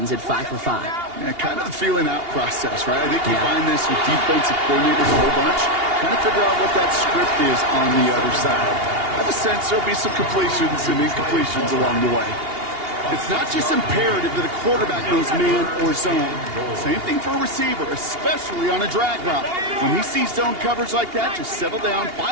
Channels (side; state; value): left; late; 2.8 ms